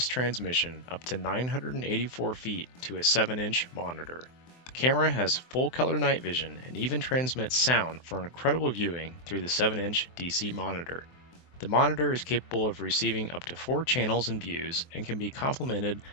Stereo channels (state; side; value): late; right; 24 ms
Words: transmission up to 984 feet to a 7-inch monitor. The camera has full color night vision and even transmits sound for incredible viewing through the 7-inch DC monitor. The monitor is capable of receiving up to 4 channels and views and can be complemented